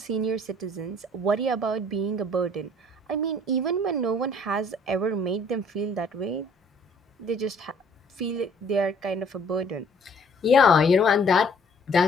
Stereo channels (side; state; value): both; normal; correlation 0.57